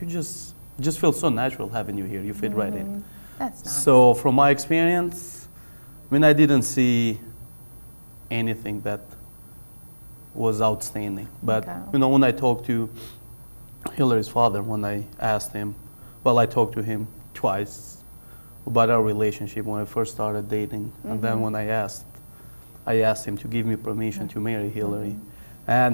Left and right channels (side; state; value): both; inverted; correlation -1.00